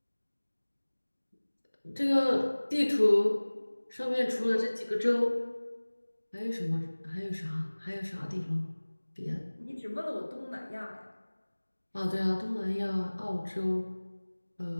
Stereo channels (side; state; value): both; inverted; correlation -1.00